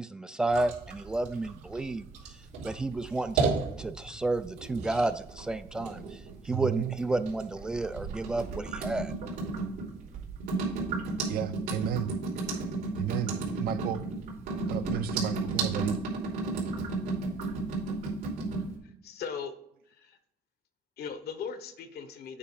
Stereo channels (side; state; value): left; quieter; 3.2 dB